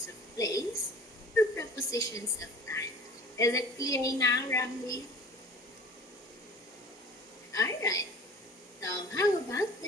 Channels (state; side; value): normal; both; correlation 0.43